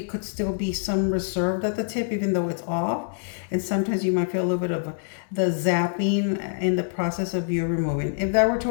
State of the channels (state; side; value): silent; right; 61 dB below the other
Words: could still be some reserved at the tip even though it's off, and sometimes you might feel a little bit of the zapping in the process of you removing. If that were to